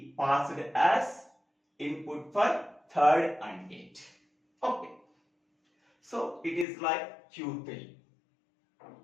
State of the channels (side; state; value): right; drops out; at 6.7 s